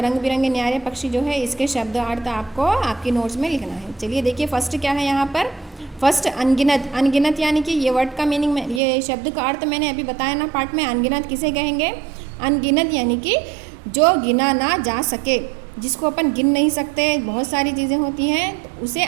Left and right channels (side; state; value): left; drops out; at 8.8 s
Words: बिरंगे न्यारे पक्षी जो है इसके शब्द अर्थ आपको आपकी नोट्स में लिखना है। चलिए देखिए फर्स्ट क्या है यहाँ पर? फर्स्ट अनगिनत। अनगिनत यानी कि ये वर्ड का मीनिंग में, ये शब्द का अर्थ मैंने अभी बताया ना पार्ट में। अनगिनत किसे कहेंगे? अनगिनत यानी कि जो गिना ना जा सके, जिसको अपन गिन नहीं सकते, बहुत सारी चीज़ें होती हैं तो उसे